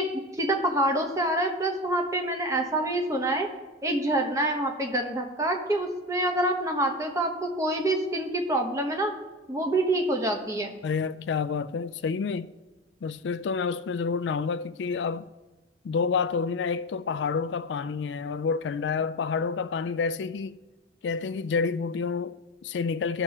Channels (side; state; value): both; normal; correlation 0.22